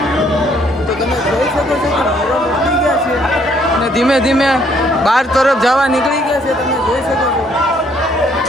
ધીમે ધીમે બહાર તરફ જવા નીકળી ગયા છે, તમે જોઈ શકો છો.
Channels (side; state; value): both; normal; correlation 0.66